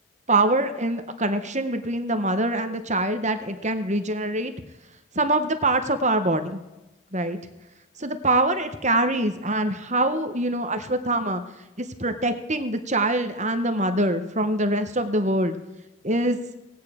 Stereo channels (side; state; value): both; normal; correlation 0.08